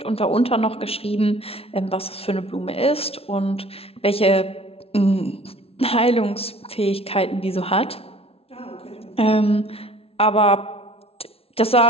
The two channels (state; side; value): late; right; 0.28 ms